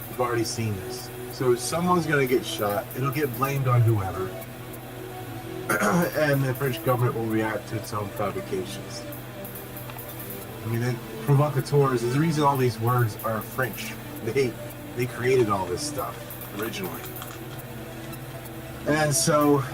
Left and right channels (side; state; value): both; identical; correlation 1.00